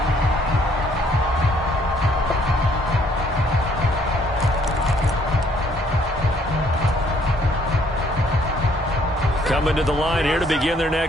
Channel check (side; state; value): both; normal; correlation 0.65